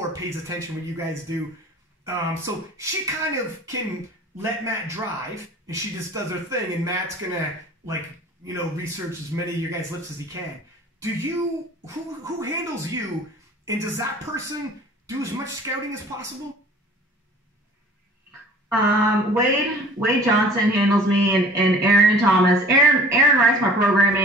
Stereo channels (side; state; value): both; normal; correlation 0.47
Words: pays attention what you guys do. So she kind of can let Matt drive, and she just does her thing, and Matt's gonna like, research as many of your guys' lifts as he can. Do you, who handles you, and does that person do as much scouting as possible? Wade Johnson handles me, and Aaron Thomas. Aaron writes my